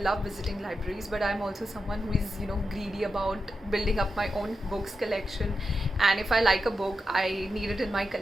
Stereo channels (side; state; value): both; normal; correlation 0.88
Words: visiting libraries, but I'm also someone who is greedy about building up my own books collection. And if I like a book, I need it in my